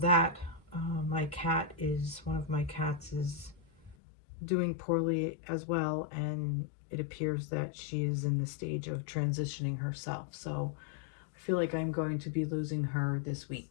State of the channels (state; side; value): drops out; right; at 4.0 s